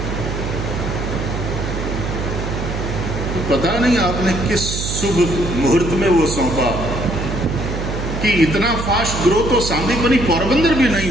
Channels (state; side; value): noise; right; hum, 4 dB below the sound